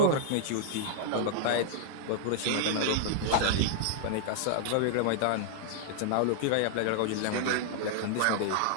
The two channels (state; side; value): different; both; correlation -0.01